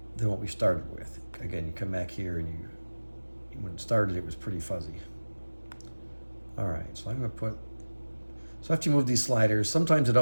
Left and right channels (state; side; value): inverted; both; correlation -1.00